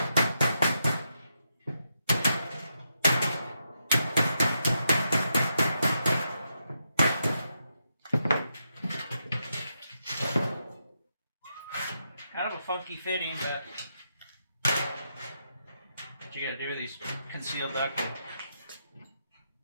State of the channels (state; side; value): inverted; both; correlation -0.83